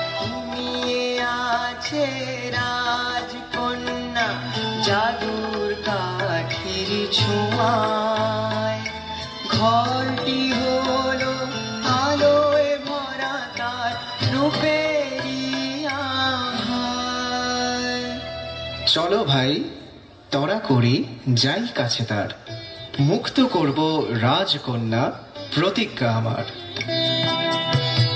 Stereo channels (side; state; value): both; identical; correlation 1.00